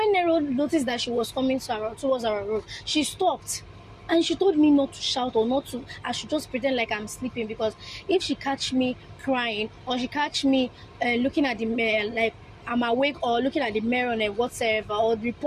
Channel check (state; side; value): identical; both; correlation 1.00